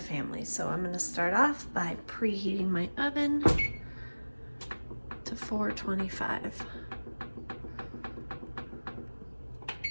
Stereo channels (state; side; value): inverted; both; correlation -1.00